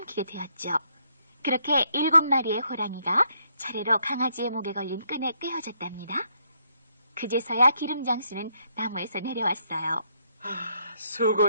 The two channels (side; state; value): both; inverted; correlation -0.73